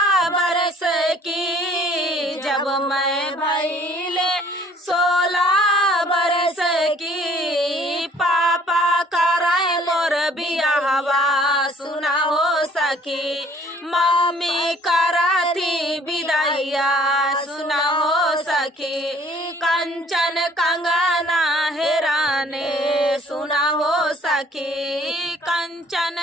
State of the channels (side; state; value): both; normal; correlation 0.57